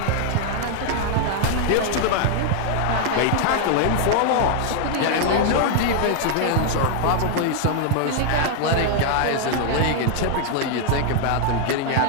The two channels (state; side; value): different; both; correlation 0.00